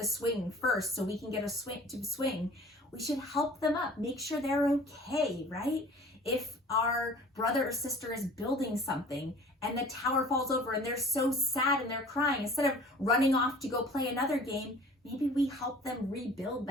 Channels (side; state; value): both; normal; correlation 0.47